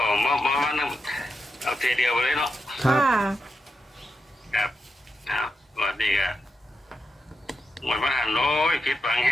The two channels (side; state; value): both; normal; correlation 0.86